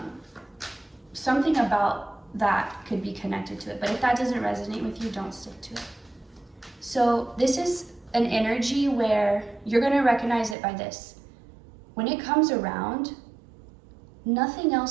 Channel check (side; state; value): left; drops out; at 10.6 s